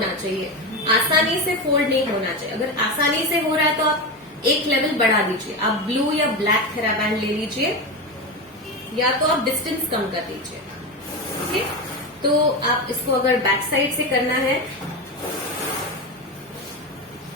चाहिए, आसानी से फोल्ड नहीं होना चाहिए। अगर आसानी से हो रहा है तो आप एक लेवल बढ़ा दीजिए, आप ब्लू या ब्लैक थेराबैंड ले लीजिए, या तो आप डिस्टेंस कम कर दीजिए। ओके, तो आप इसको अगर बैक साइड से करना है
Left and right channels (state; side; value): normal; both; correlation 0.18